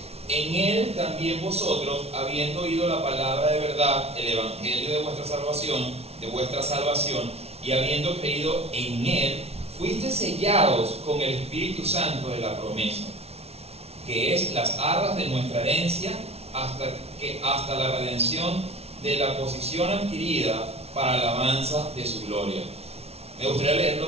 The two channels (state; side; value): late; left; 0.30 ms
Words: en Él también vosotros, habiendo oído la palabra de verdad, el evangelio de vuestra salvación, y habiendo creído en Él, fuiste sellados con el Espíritu Santo de la promesa, que es las arras de nuestra herencia, hasta la redención de la posición adquirida para la alabanza de su gloria. Me gustaría leerlo